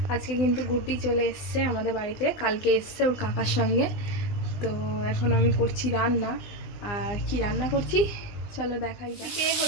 আজকে কিন্তু গুড্ডি চলে এসছে আমাদের বাড়িতে, কালকে এসছে ওর কাকার সঙ্গে। তো এখন আমি করছি রান্না। আর কি রান্না করছি চলো দেখাই যাক। এদিকে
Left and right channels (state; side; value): late; right; 20 ms